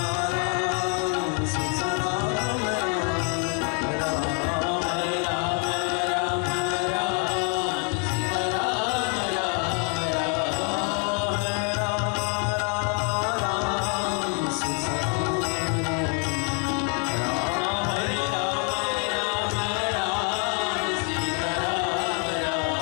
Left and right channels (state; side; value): quieter; right; 36.5 dB